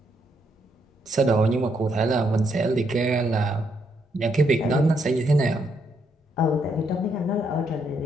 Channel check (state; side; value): normal; both; correlation 0.76